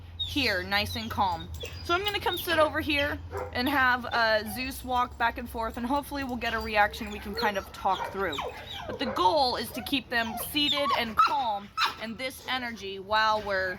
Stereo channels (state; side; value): identical; both; correlation 1.00